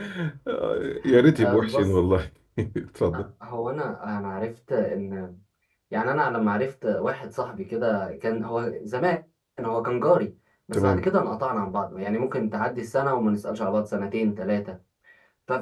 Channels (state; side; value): identical; both; correlation 1.00